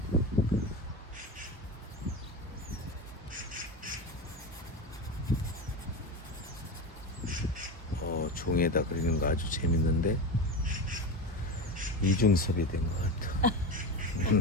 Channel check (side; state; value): both; normal; correlation 0.22